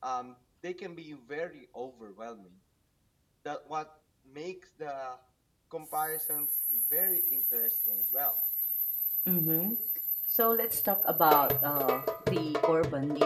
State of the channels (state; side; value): identical; both; correlation 1.00